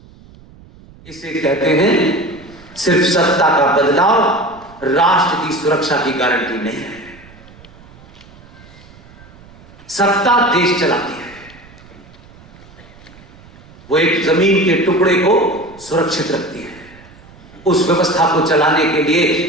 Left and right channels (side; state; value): right; noise; rumble, 23 dB below the sound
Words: इसे कहते हैं सिर्फ सत्ता का बदलाव राष्ट्र की सुरक्षा की गारंटी नहीं है। सत्ता देश चलाती है, वो एक जमीन के टुकड़े को सुरक्षित रखती है। उस व्यवस्था को चलाने के लिए